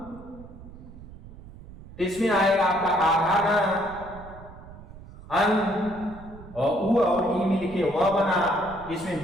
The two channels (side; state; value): right; noise; rumble, 17 dB below the sound